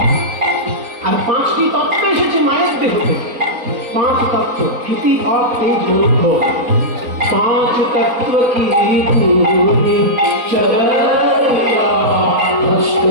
আর 5টি তত্ত্ব এসেছে মায়ের দেহ থেকে। 5 তত্ত্ব, স্থিতি, ভাব, তেজ, মূর্ধ। 5 तत्व की पूरी चराया, अष्ट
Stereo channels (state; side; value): late; left; 3.9 ms